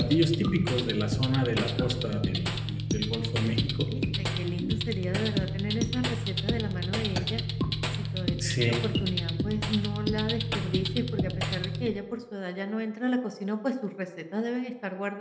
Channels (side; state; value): both; identical; correlation 1.00